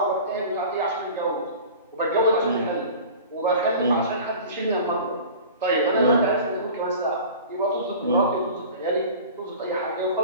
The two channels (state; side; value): inverted; both; correlation -0.39